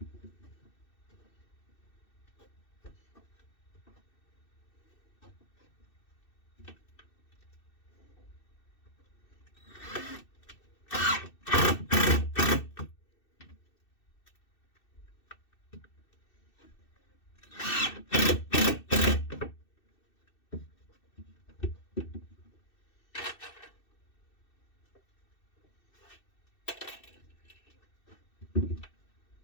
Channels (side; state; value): right; late; 2.6 ms